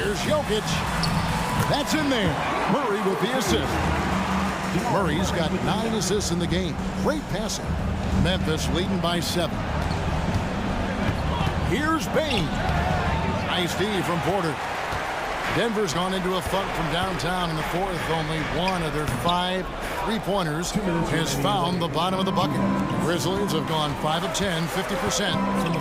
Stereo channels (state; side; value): identical; both; correlation 1.00